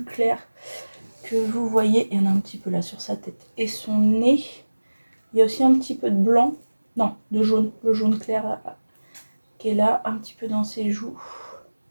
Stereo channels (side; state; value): both; inverted; correlation -1.00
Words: clair que vous voyez. Il y en a un petit peu là sur sa tête et son nez. Il y a aussi un petit peu de blanc. Non, de jaune. Le jaune clair là, qui est là, un petit peu dans ses joues.